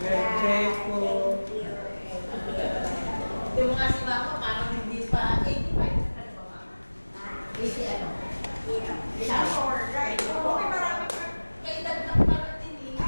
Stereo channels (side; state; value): both; inverted; correlation -1.00